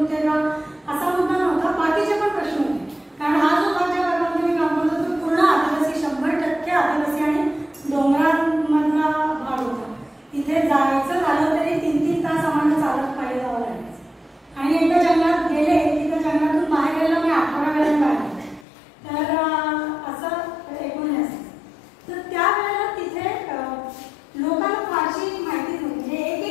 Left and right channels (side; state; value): right; drops out; at 18.7 s